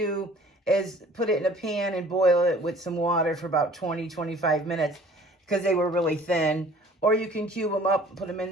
is put it in a pan and boil it with some water for about 20, 25 minutes because they were really thin. Or you can cube them up and put them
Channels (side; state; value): both; normal; correlation 0.51